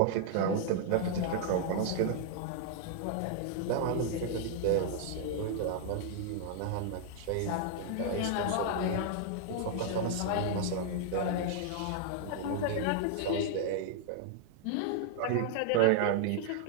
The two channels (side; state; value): both; different; correlation 0.00